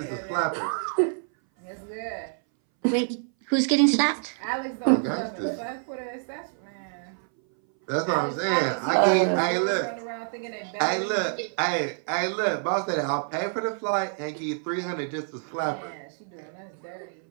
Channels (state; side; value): silent; left; 60 dB below the other